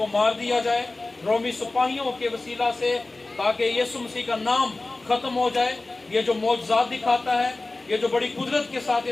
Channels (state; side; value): quieter; right; 3.2 dB